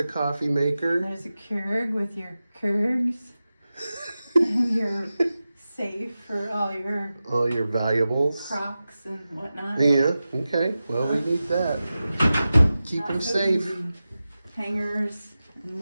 coffee maker. There's a Keurig with your Keurigs and your safe for all your valuables. Crocs and whatnot. Yeah. Okay. Well, we need that. Keep them safe. Easy. Hangers and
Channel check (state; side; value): inverted; both; correlation -0.94